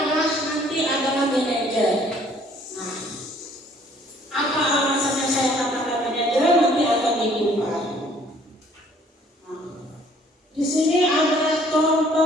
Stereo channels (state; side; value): normal; both; correlation 0.59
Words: manajer. Nah, apa alasannya saya katakan manajer nanti akan dikupas. Nah, di sini adalah